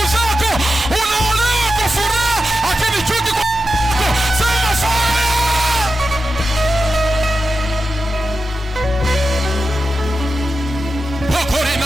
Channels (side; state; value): both; normal; correlation 0.90